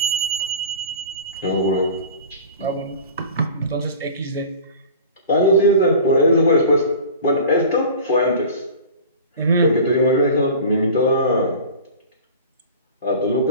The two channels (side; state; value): both; inverted; correlation -0.39